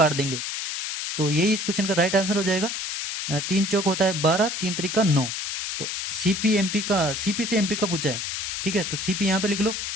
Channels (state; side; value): noise; left; hiss, 4 dB below the sound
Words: देंगे, तो यही इस क्वेश्चन का राइट आंसर हो जाएगा। 3 चौक होता है 12, 3 त्रिका 9, तो सीपी एमपी का, सीपी से एमपी का पूछा है। ठीक है, तो सीपी यहाँ पे लिख लो,